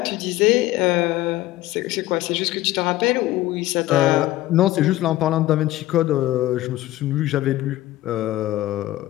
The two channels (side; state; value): right; quieter; 15.9 dB